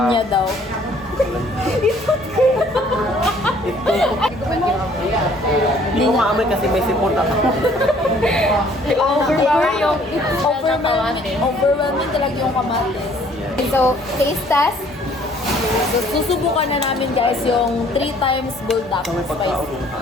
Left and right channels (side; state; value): both; normal; correlation 0.59